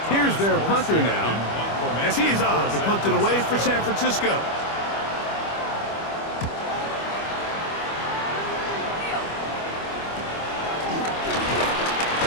Here's their punter now, as he's on to punt it away for San Francisco.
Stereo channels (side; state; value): right; late; 25 ms